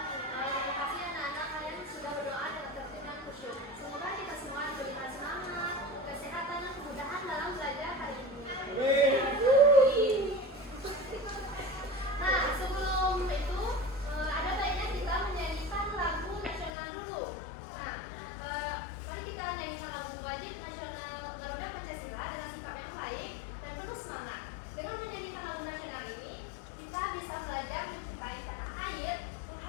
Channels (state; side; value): drops out; right; at 16.7 s